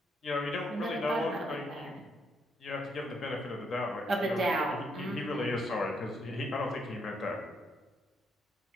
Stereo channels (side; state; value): both; normal; correlation 0.75